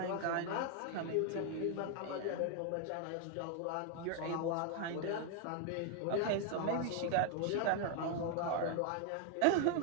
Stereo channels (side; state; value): both; different; correlation 0.01